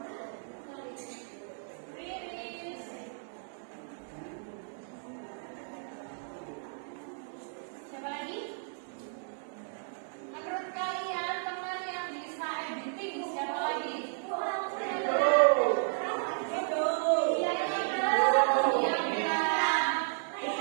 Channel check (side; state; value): left; silent; digital silence